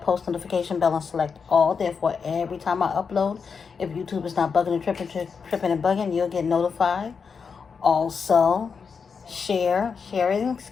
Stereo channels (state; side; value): quieter; right; 5.8 dB